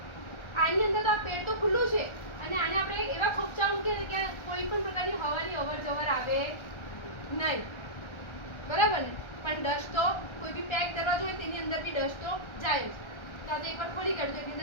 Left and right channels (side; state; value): right; late; 1.3 ms